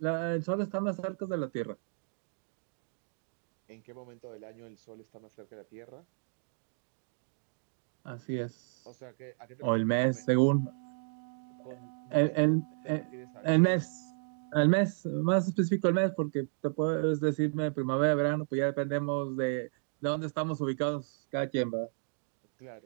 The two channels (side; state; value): left; silent; digital silence